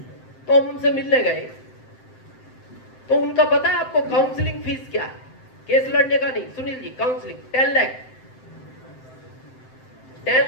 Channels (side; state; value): right; late; 7.7 ms